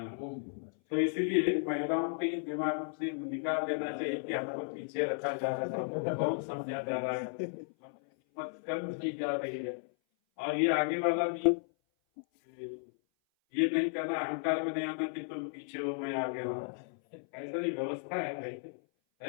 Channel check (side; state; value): right; silent; 55 dB below the other